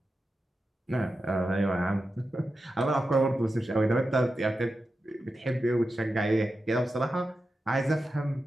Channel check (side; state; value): both; normal; correlation 0.91